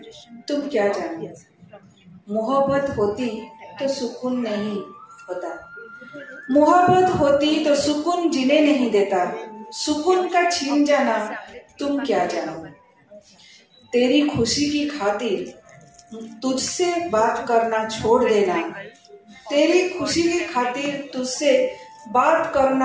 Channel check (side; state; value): both; identical; correlation 1.00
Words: तुम क्या जानो। मोहब्बत होती तो सुकून नहीं होता, मोहब्बत होती तो सुकून जीने नहीं देता। सुकून का छीन जाना तुम क्या जानो। तेरी खुशी की खातिर तुझसे बात करना छोड़ देना, तेरी खुशी की खातिर तुझसे बात